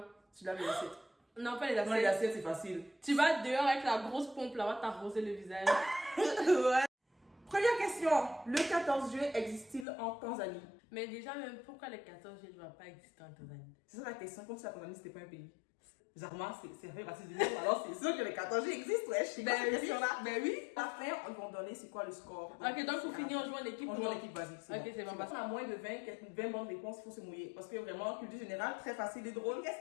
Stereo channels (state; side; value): drops out; right; at 9.9 s